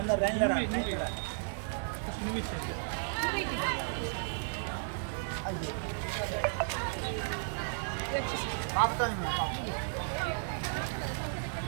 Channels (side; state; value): left; silent; digital silence